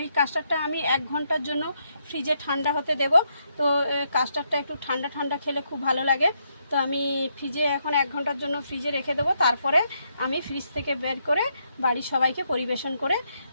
এই কাস্টার্ডটা আমি 1 ঘন্টার জন্য ফ্রিজে ঠান্ডা হতে দেব। তো কাস্টার্ডটা একটু ঠান্ডা ঠান্ডা খেলে খুব ভালো লাগে। তো আমি ফ্রিজে এখন 1 ঘন্টার জন্য ফ্রিজে রেখে দেবো, তারপরে আমি ফ্রিজ থেকে বের করে বাড়ির সবাইকে পরিবেশন করে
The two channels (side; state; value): both; inverted; correlation -0.78